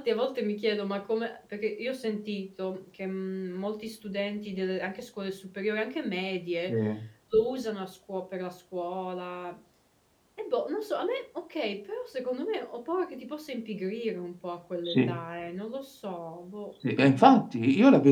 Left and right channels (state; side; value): identical; both; correlation 1.00